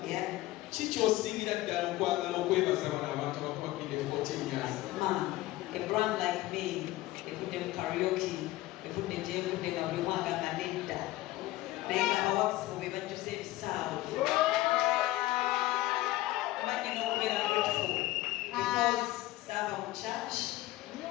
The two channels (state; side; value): quieter; right; 17.3 dB